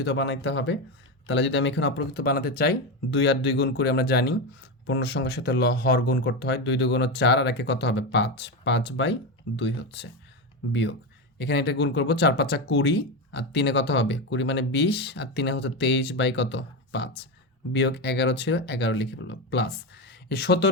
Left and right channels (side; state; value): both; normal; correlation 0.15